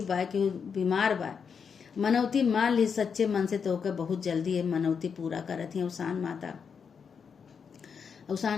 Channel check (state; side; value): quieter; right; 6.4 dB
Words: बा, केहू बीमार बा, मनौती मान ली सच्चे मन से तो ओके बहुत जल्दी है मनौती पूरा करत है अवसान माता।